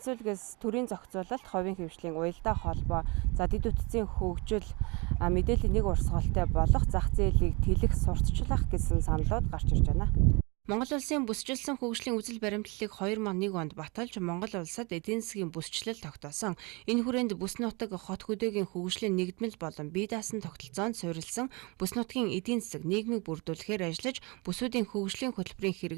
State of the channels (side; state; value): left; quieter; 28.5 dB